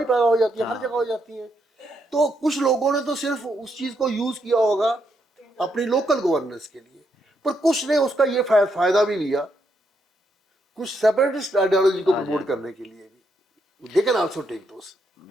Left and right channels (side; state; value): both; normal; correlation 0.78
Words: पैदा हो जाती है, हर जगह हो जाती है। तो कुछ लोगों ने तो सिर्फ उस चीज को यूज किया होगा अपनी लोकल गवर्नेंस के लिए, पर कुछ ने उसका ये फायदा भी लिया, कुछ सेपरेटिस्ट आइडियोलॉजी को प्रमोट करने के लिए भी, they can also take those,